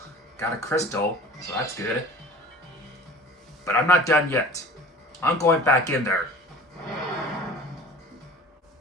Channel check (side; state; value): both; normal; correlation 0.42